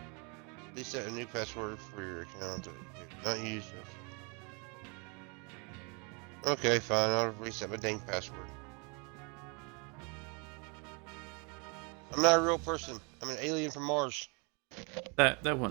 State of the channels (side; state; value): left; quieter; 33.0 dB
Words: Please set a new password for your account. Not use. Okay, fine. I'll reset my dang password. I'm not a real person. I'm an alien from Mars. That